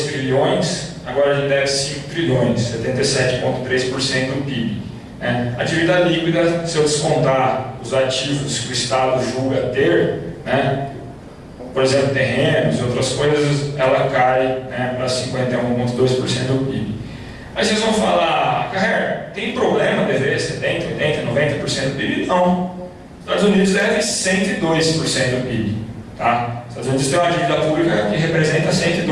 trilhões, agora a gente deve 5 trilhões, 77,3% do PIB. A dívida líquida, se eu descontar os ativos que o Estado julga ter, né, por exemplo, terrenos e outras coisas, ela cai, né, para 51,2% do PIB. Aí vocês vão falar, Carrer, tem problema dever 70%, 80%, 90% do PIB? Não. Os Estados Unidos devem 102% do PIB. Tá? Os Estados Unidos têm uma dívida pública que representa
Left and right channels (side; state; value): both; identical; correlation 1.00